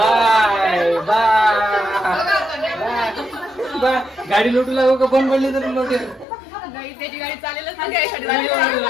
बाय. गाडी लोटू लागू का बंद पडली तरी लोटे. त्याची गाडी चालेलच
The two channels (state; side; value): drops out; right; at 6.2 s